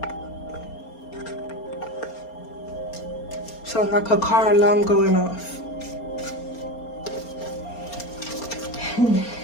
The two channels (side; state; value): right; late; 4.3 ms